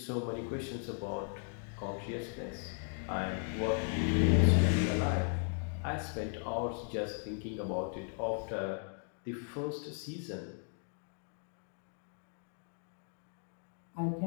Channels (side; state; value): right; silent; 53 dB below the other